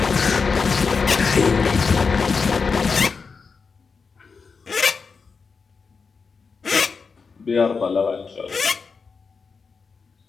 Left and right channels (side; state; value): right; quieter; 5.1 dB